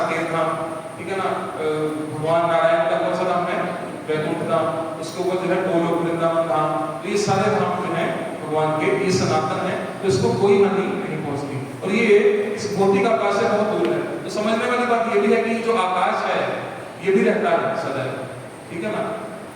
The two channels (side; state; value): both; identical; correlation 1.00